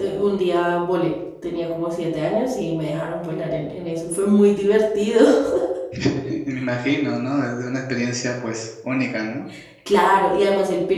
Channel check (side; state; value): both; identical; correlation 1.00